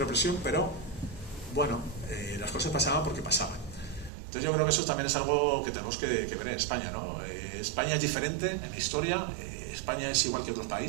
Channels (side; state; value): left; drops out; at 4.1 s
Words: pero bueno, las cosas pasaban porque pasaban. Entonces yo creo que eso también es algo que tenemos que ver en España, ¿no? España es diferente en la historia, España es igual que otros